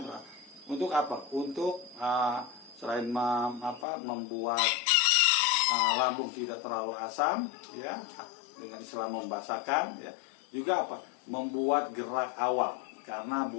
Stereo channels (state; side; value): drops out; right; at 3.9 s